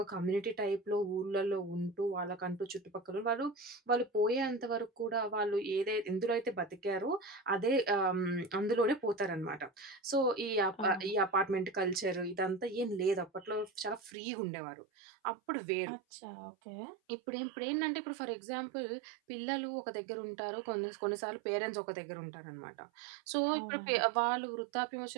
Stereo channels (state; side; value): drops out; left; at 14.1 s